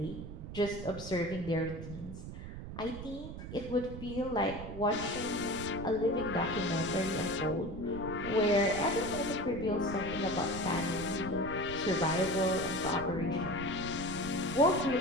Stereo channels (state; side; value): noise; right; rumble, 9 dB below the sound